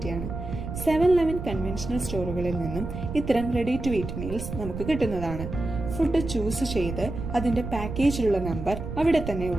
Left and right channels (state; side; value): noise; right; rumble, 7 dB below the sound